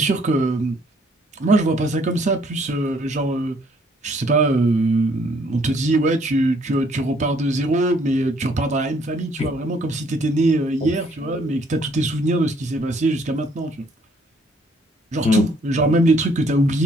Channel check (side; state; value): both; normal; correlation 0.64